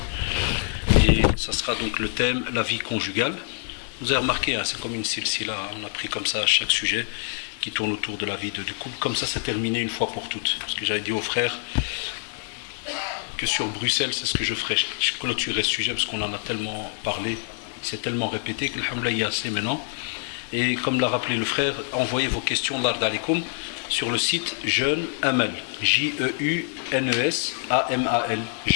et ça sera donc le thème la vie conjugale. Vous avez remarqué, c'est comme une silsila, on a pris comme ça chaque sujet qui tourne autour de la vie du couple, comme ça c'est terminé une fois pour toutes. Parce que j'avais dit aux frères que sur Bruxelles, c'est ce que je ferai, je clôturerai ce sujet parce qu'on en a tellement parlé, il s'est tellement répété que alhamdoulilah il y a assez maintenant. Et comme l'a rappelé le frère, envoyez vos questions l'Ard Alikum sur le site Jeune Amal, J-E-U-N-E-S-A-M-A-L,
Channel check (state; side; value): silent; right; digital silence